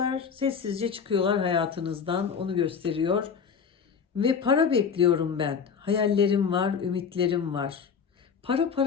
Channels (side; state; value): right; quieter; 6.4 dB